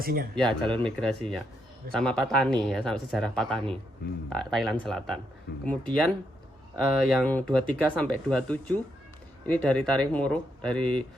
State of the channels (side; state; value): both; normal; correlation 0.79